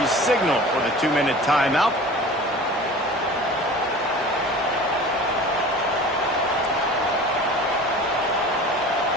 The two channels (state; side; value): normal; both; correlation 0.40